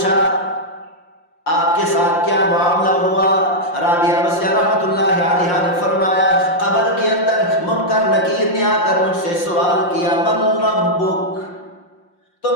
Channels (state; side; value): late; right; 5.7 ms